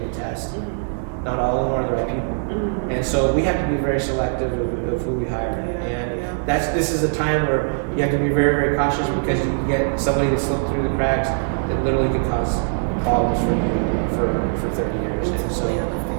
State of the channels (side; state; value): left; silent; digital silence